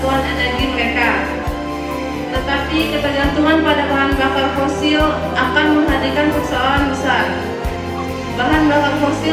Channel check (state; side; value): identical; both; correlation 1.00